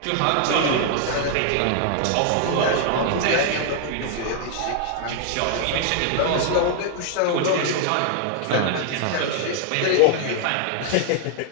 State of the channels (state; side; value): different; both; correlation 0.00